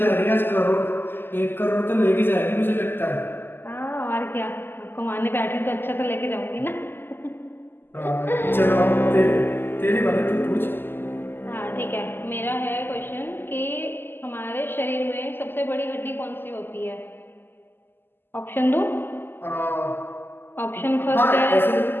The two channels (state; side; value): late; right; 0.10 ms